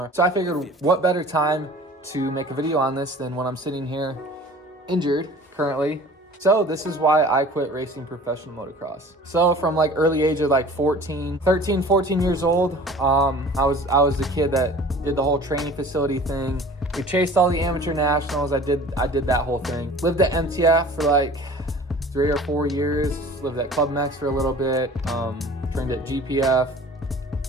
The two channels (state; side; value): normal; both; correlation 0.45